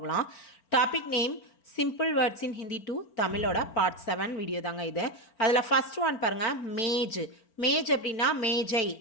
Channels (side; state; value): right; late; 4.4 ms